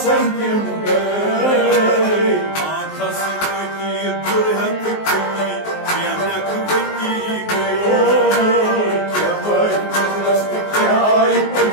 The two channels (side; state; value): right; late; 19 ms